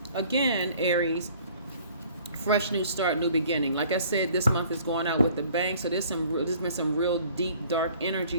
again, Aries, fresh new start, new beginning. Like I said, this month is going out with the bang. So there's been some real deep, dark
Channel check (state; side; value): inverted; both; correlation -0.54